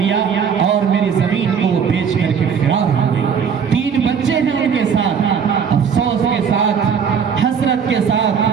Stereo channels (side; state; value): left; quieter; 6.9 dB